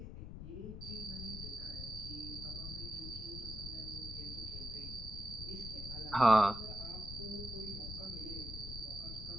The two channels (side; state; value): left; noise; rumble, 8 dB below the sound